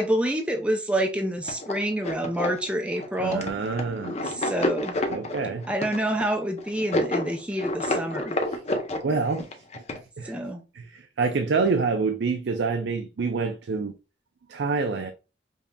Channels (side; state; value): both; normal; correlation 0.41